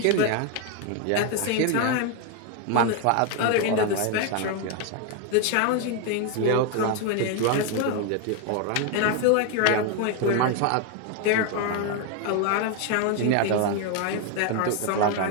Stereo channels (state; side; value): different; both; correlation 0.01